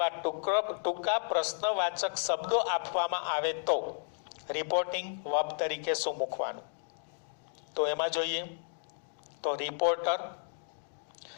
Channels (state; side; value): silent; right; digital silence